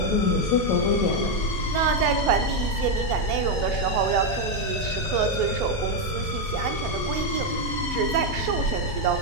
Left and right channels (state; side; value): normal; both; correlation 0.04